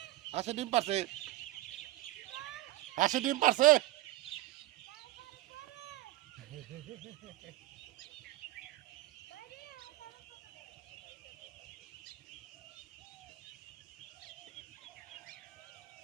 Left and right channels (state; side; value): quieter; left; 16.2 dB